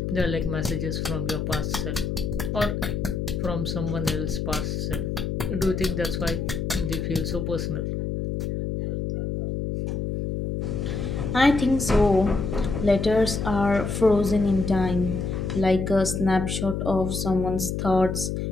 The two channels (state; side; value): noise; left; hum, 2 dB below the sound